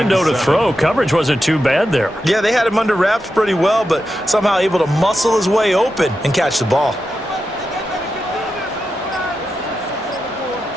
to throw. Coverage wasn't too bad there. Yeah, they had him under wraps pretty well, but somehow able to muscle his way open and catch the ball.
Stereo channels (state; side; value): normal; both; correlation 0.89